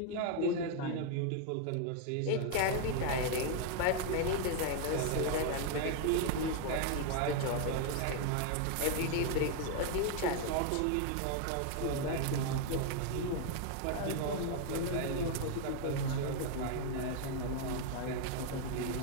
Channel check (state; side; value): different; both; correlation 0.00